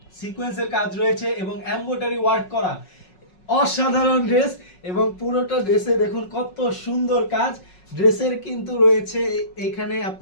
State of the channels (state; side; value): late; right; 5.4 ms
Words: সিকোয়েন্সের কাজ রয়েছে এবং এমব্রয়ডারি ওয়ার্ক করা, অসাধারণ ড্রেস। এবং পুরোটা ড্রেসে দেখুন কত সুন্দর কাজ। ড্রেসের কিন্তু রয়েছে এখানে